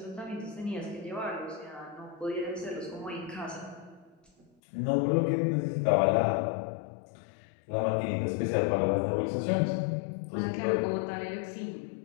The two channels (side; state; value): right; drops out; at 4.5 s